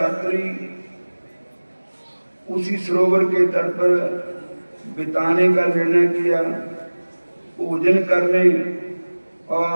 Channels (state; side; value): inverted; both; correlation -1.00